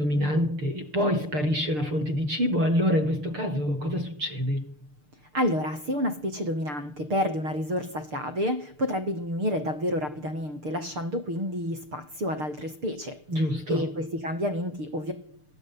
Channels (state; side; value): late; left; 6.7 ms